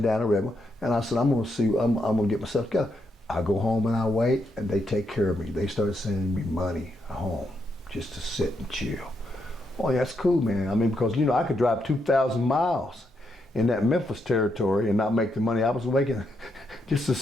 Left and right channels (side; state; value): both; normal; correlation 0.80